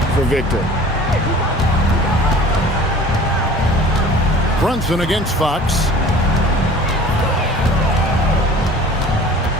for Victor. Brunson against Fox.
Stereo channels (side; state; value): both; normal; correlation 0.45